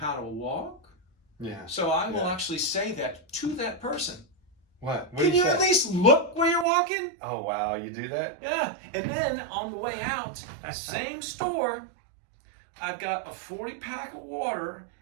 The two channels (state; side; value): drops out; left; at 6.7 s